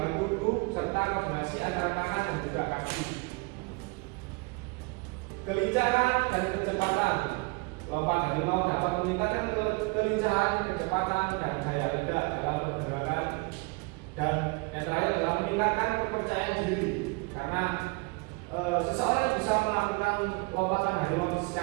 tubuh serta koordinasi antara tangan dan juga kaki. Kelincahan dan kecepatan. Lompat harimau dapat meningkatkan kelincahan, kecepatan, dan daya ledak dalam pergerakan. Dan yang terakhir adalah meningkatkan kepercayaan diri, karena seseorang bisa melakukan lompatan harimau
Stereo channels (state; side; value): quieter; left; 29.2 dB